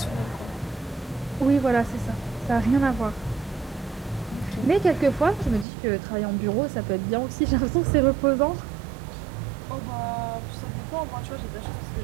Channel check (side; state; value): left; drops out; at 5.7 s